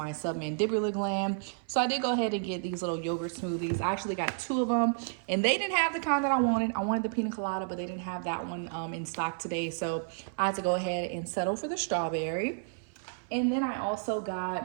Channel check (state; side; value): silent; left; 57 dB below the other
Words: submandibular gland. So I did go ahead and get these little yogurt smoothies. I actually got 2 of them, and they didn't have the kind that I wanted. I wanted the pina colada, but they didn't have that one in stock today. So I had to go ahead and settle for the strawberry. And then I also